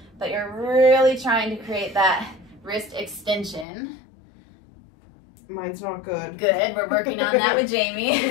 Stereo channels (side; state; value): right; drops out; at 3.7 s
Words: but you're really trying to create that wrist extension. Mine's not good. Good, we're working on that with Jamie.